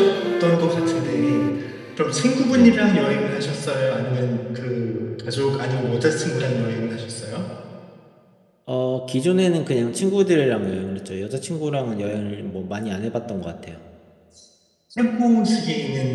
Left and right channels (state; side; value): identical; both; correlation 1.00